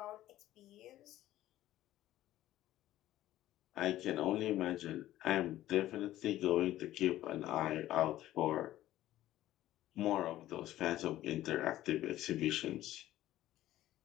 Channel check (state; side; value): quieter; right; 14.3 dB